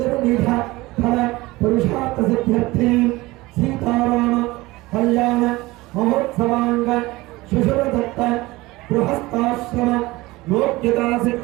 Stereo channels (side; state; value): left; quieter; 20.4 dB